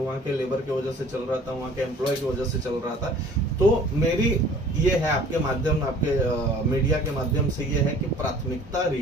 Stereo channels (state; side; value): normal; both; correlation 0.50